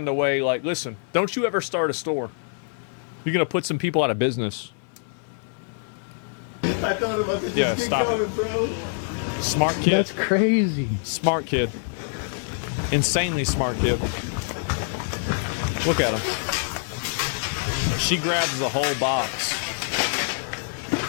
the way, like, listen, don't you ever start a store. You're going to put some people out of business. I thought about to just get stop going, it. bro. Smart kid. That's crazy. Smart kid. Insanely smart kid. Look at him. She grabs the whole box.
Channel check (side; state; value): right; silent; 62 dB below the other